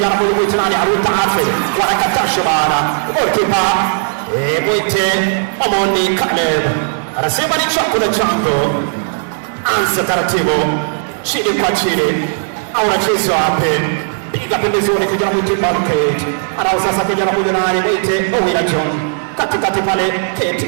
huyo mwitenari Arita Alfred wanakatasha bana goalkeeper mwite Omoni Caleb anasema ni chakula changu. Anza taratibu chini kwa chini au anacheza wapi piga pembezoni kijana mwite Malikate anao sasa kijana huyo nani mwite Owina John katikati pale Kate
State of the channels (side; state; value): left; silent; digital silence